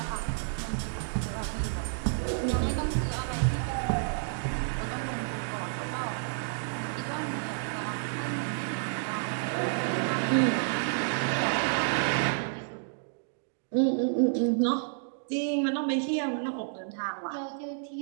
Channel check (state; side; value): silent; left; digital silence